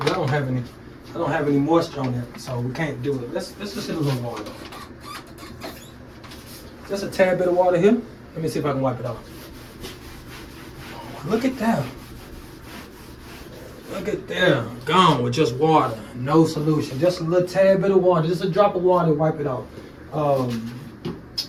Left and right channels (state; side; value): identical; both; correlation 1.00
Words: I don't have any moisture on that, so we can't do it. Let's just hit a little water. Just a tad bit of water here. Let me see if I can wipe it off. Look at that. Look at there, gone with just water, no solution. Just a little tad bit of water, just a drop of water, wipe it off.